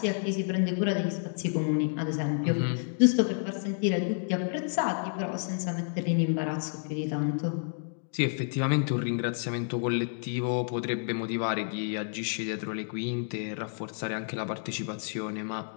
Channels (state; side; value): silent; right; digital silence